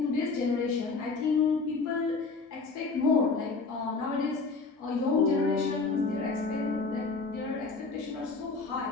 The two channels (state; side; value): quieter; right; 4.2 dB